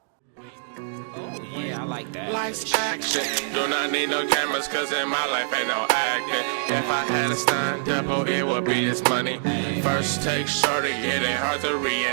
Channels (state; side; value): silent; left; digital silence